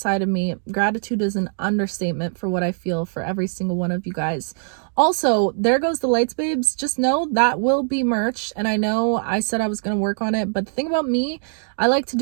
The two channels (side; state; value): left; silent; digital silence